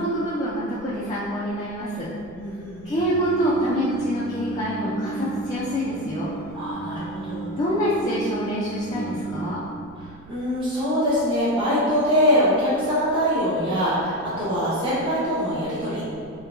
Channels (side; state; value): right; noise; rumble, 22 dB below the sound